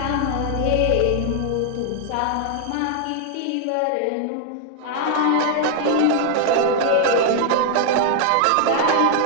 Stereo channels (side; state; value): both; different; correlation 0.00